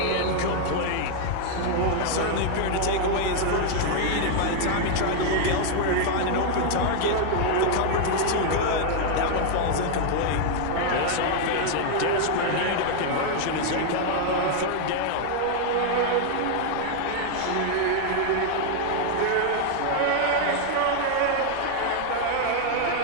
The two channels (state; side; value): different; both; correlation 0.00